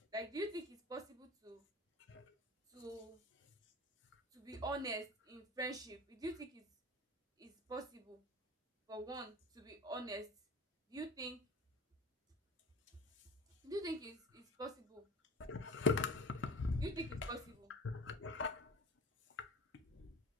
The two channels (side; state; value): both; normal; correlation 0.39